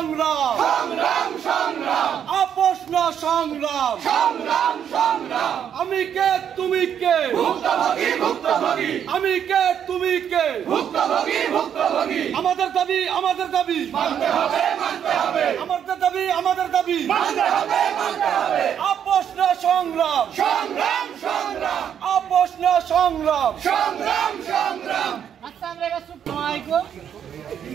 সংগ্রাম সংগ্রাম আপোষ না সংগ্রাম সংগ্রাম সংগ্রাম আমি কে তুমি কে ভুক্তভোগী ভুক্তভোগী আমি কে তুমি কে ভুক্তভোগী ভুক্তভোগী আমাদের দাবি মানতে হবে আমাদের দাবি মানতে হবে আপোষ না সংগ্রাম সংগ্রাম সংগ্রাম আপোষ না সংগ্রাম সংগ্রাম সংগ্রাম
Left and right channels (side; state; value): left; quieter; 8.8 dB